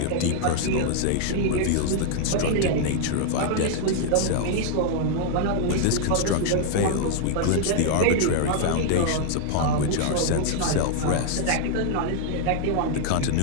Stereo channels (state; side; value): different; both; correlation 0.00